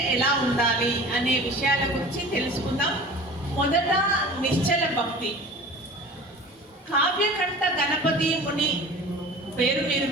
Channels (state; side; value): normal; both; correlation 0.39